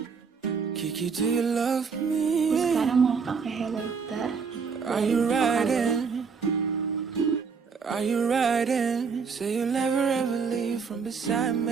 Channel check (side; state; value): left; quieter; 5.5 dB